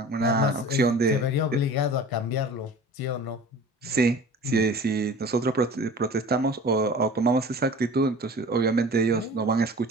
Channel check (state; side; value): normal; both; correlation 0.42